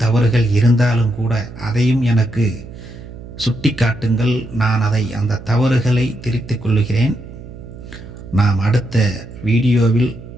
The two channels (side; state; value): right; noise; hum, 15 dB below the sound